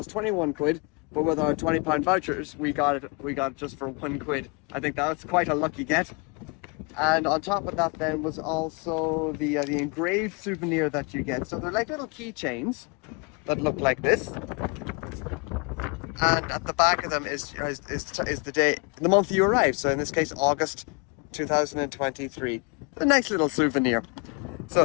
21 quid, but with our £20 vouchers, we got it just for £1. I think that's quite a lucky get. And on top of that, then was also the engraved souvenir that you get. So they're like little keychains that look like this. And at the back of them is the day, the month you arrived. So in this case, August 2023. A nice little souvenir. So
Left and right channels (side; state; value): right; quieter; 32.0 dB